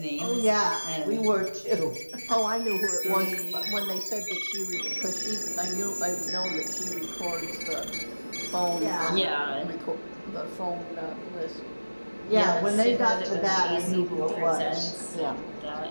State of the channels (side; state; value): both; inverted; correlation -1.00